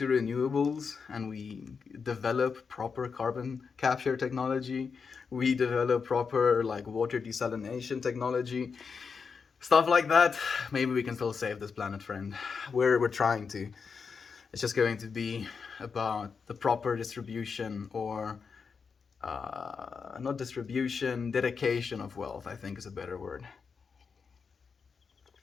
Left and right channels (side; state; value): right; quieter; 5.6 dB